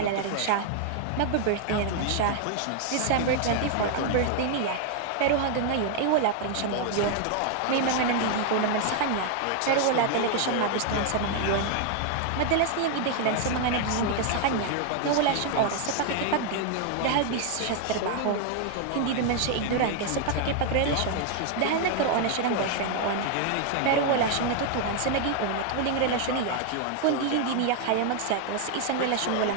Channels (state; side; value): different; both; correlation 0.00